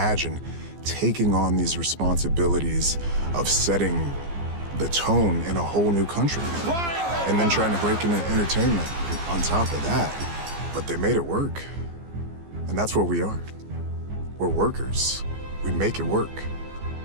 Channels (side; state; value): left; late; 15 ms